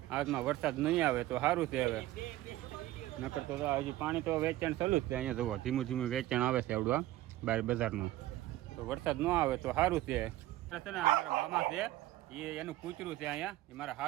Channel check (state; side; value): quieter; left; 15.9 dB